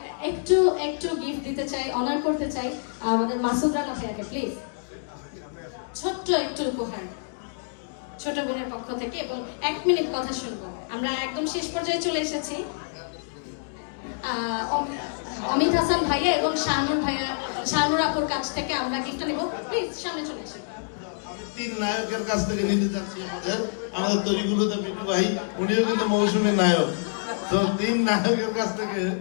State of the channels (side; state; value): right; silent; digital silence